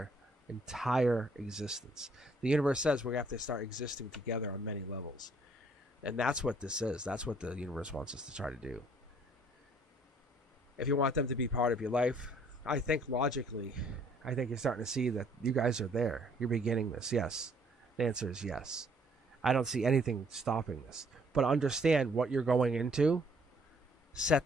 entire existence. The universe says we're going to have to start existing together on many levels. And that's what this is. That's what the universe wants us to try to do. If you want them to be part of your life, I think logically, I think you're starting to see that you guys are there. You're beginning this. Yes. The answer is yes. I don't see anything stopping this. But understand what you're going into.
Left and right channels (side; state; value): both; normal; correlation 0.62